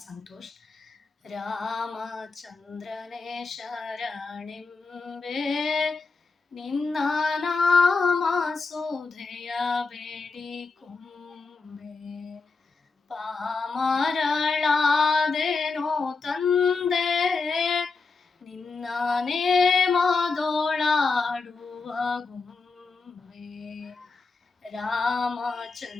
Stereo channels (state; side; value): quieter; right; 4.3 dB